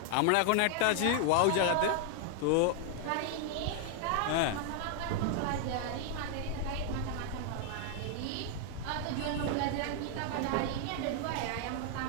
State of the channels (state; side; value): different; both; correlation 0.00